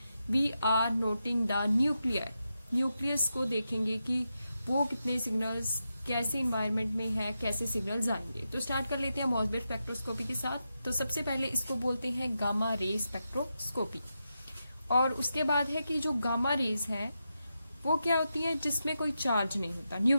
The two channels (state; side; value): inverted; both; correlation -0.87